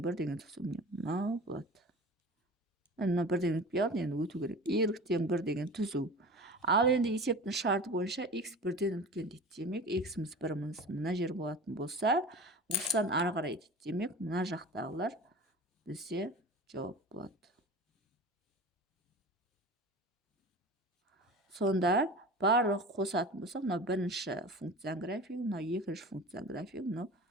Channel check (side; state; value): both; normal; correlation 0.36